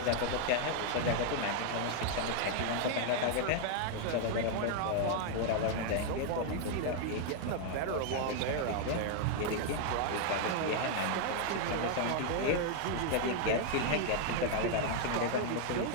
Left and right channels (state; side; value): different; both; correlation 0.00